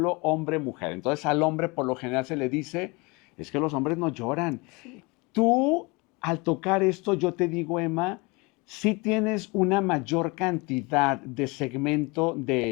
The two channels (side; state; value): right; quieter; 26.9 dB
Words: hombre, mujer. Entonces al hombre por lo general se le dice, es que los hombres no lloran. Sí. Tú, al tocar esto, yo te digo, Emma, si tienes una mayor cantidad de segmento